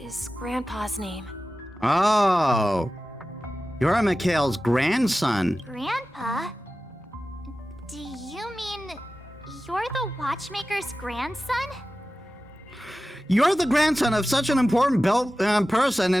Grandpa's name. Oh. You're Mikhail's grandson. Grandpa? Do you mean you're the Watchmaker's grandson? You're the grandson of such an important person,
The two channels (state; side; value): normal; both; correlation 0.95